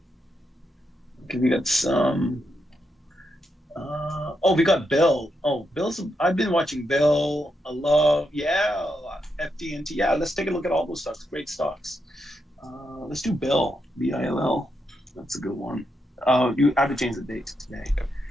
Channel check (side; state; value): both; normal; correlation 0.83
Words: we got some. We got Bill. I've been watching Bill. I love, FDNT. Yeah, let's take a look at all those stocks. Great stocks. Let's do Bill. BILL. That's a good one. You have to change the date today.